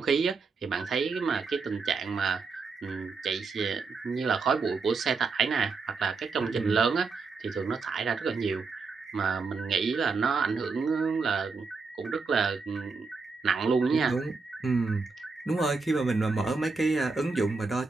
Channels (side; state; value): left; quieter; 4.5 dB